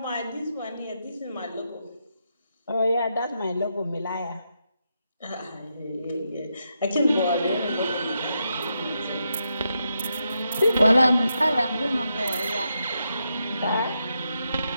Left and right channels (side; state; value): both; inverted; correlation -0.84